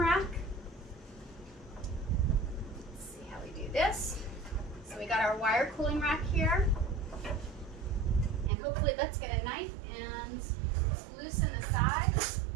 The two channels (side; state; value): left; drops out; at 8.5 s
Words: Let's see how we do this. So we got our wire cooling rack here. And hopefully let's get a knife and loosen the sides.